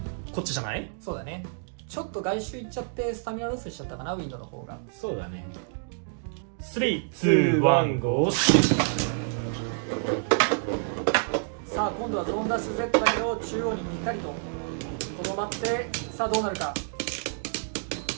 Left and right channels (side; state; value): left; silent; digital silence